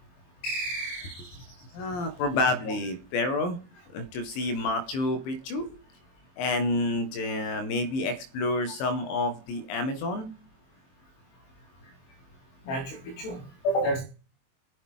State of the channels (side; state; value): right; late; 22 ms